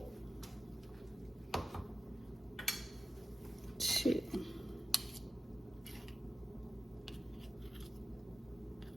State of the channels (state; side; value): normal; both; correlation 0.93